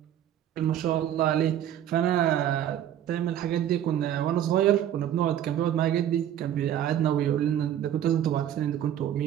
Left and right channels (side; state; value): left; quieter; 10.8 dB